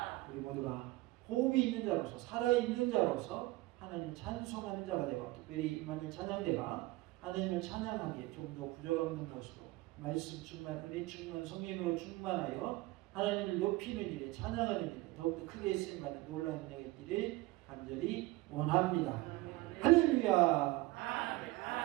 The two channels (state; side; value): quieter; left; 20.1 dB